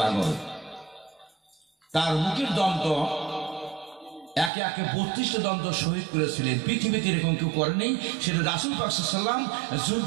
পাগল। তার মুখের দন্ত একে একে ৩২টা দন্ত শহীদ করেছিলেন, পৃথিবীতে এরকম কেউ করেনি। সেটা রাসূল পাক সাল্লাল্লাহু আলাইহি ওয়াসাল্লাম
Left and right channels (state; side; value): drops out; left; at 4.5 s